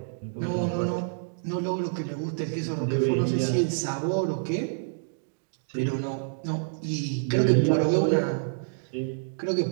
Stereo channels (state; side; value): silent; left; digital silence